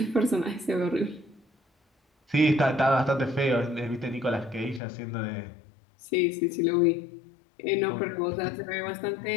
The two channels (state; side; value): drops out; right; at 4.8 s